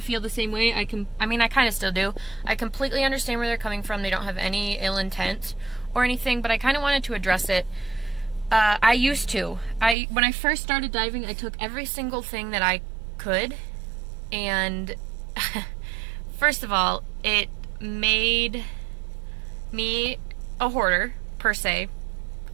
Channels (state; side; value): drops out; left; at 10.0 s